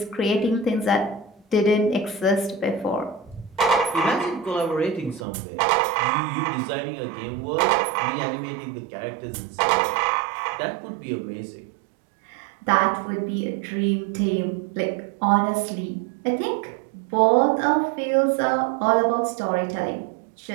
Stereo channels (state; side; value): drops out; left; at 5.2 s